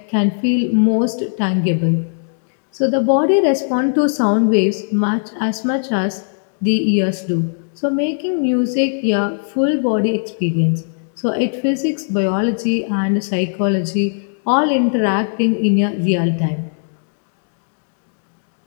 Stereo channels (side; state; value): right; silent; digital silence